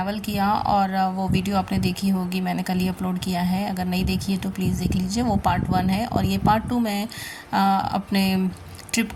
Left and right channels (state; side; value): identical; both; correlation 1.00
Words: किया और वो वीडियो आपने देखी होगी, मैंने कल ही अपलोड किया है। अगर नहीं देखी है तो प्लीज़ देख लीजिए, वो पार्ट 1 है और ये पार्ट 2 मैं अपने ट्रिप